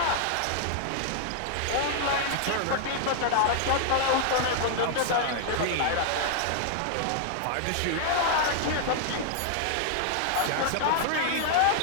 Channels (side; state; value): both; different; correlation -0.01